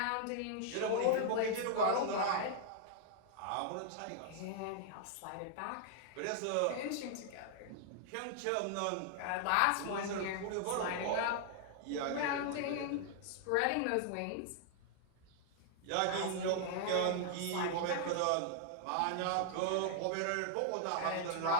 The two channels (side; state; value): both; different; correlation 0.00